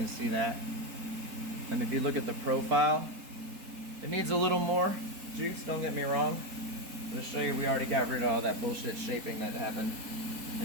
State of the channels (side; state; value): left; late; 4.2 ms